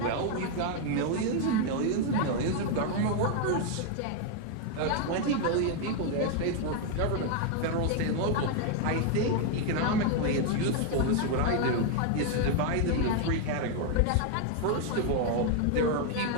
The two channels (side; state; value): both; different; correlation 0.01